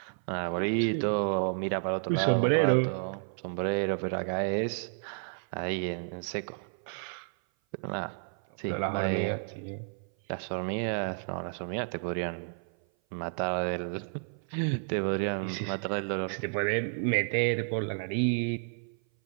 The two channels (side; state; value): left; silent; 56 dB below the other